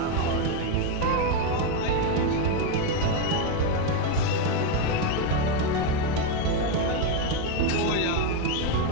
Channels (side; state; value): both; different; correlation 0.02